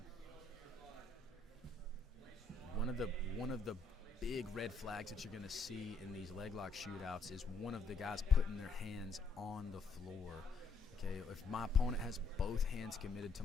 one of the big red flags that you're going to see in these leg lock shootouts is one of the guys putting their hands on the floor. Okay, if my opponent has both hands committed to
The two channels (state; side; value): quieter; right; 4.0 dB